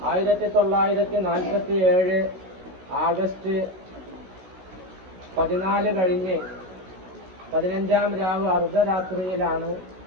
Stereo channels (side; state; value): left; late; 16 ms